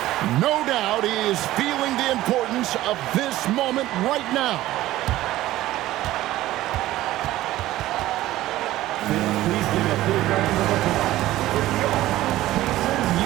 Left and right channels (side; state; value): left; quieter; 15.6 dB